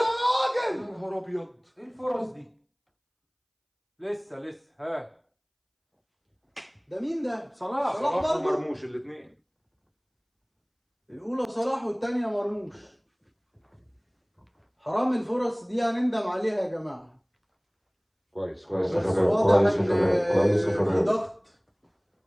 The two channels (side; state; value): both; identical; correlation 1.00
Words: يا نهار ابيض. ايه الفرص دي؟ لسه ها ده مين ده؟ صلاح صلاح برضه؟ مرموش الاثنين. الأولى صلاح والتانية مرموش. حرام الفرص دي هنندم عليها يا جماعة. كويس بس يا شباب، واضح كويس يا إن شباب، كويس يا في شباب. ضغط.